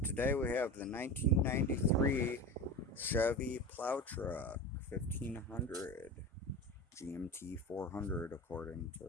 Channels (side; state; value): both; normal; correlation 0.28